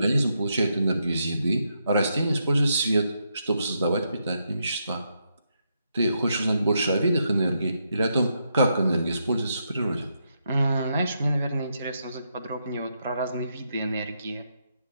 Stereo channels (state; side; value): inverted; both; correlation -0.80